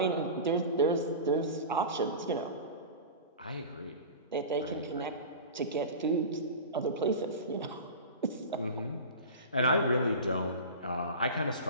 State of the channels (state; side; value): inverted; both; correlation -0.31